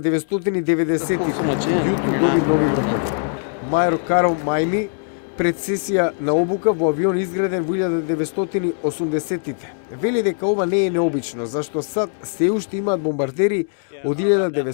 Мајор Карл Мајми пред сесија на обука во авион изграден во 1980-тите. Вели дека ова не е необично, зашто САД се уште имаат бомбардери од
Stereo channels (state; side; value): silent; right; digital silence